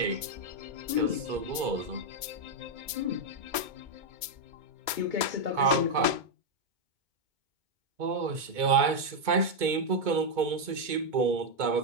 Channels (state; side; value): late; left; 2.2 ms